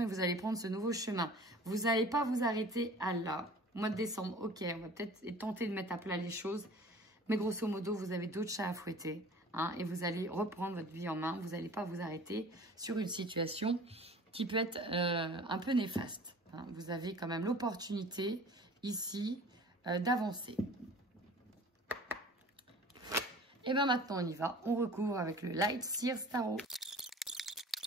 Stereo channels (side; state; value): both; normal; correlation 0.45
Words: vous allez prendre ce nouveau chemin. Vous n'allez pas vous arrêter à là. Mois de décembre, ok, on va peut-être tenter de mettre à plat les choses. Mais grosso modo, vous avez d'autres chats à fouetter. Hein, et vous allez reprendre votre vie en main. Vous n'allez pas vous arrêter sur une situation qui peut être un peu néfaste. Hein. Vous avez quand même l'opportunité ici d'avancer. Et bien maintenant, on y va. On recouvre avec le Light Sears Tarot.